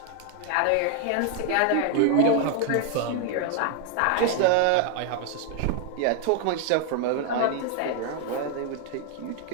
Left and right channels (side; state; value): both; different; correlation 0.00